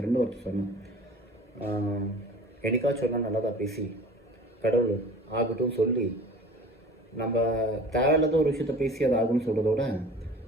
ஒருத்தர் சொன்னேன், என்னைக்காச்சும் சொன்னால் நல்லதாக பேசி கடவுள் ஆகட்டும் சொல்லி, நம்ம தேவையில்லாத ஒரு விஷயத்த பேசி அது ஆகும்னு சொல்கிறதோட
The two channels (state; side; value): normal; both; correlation 0.43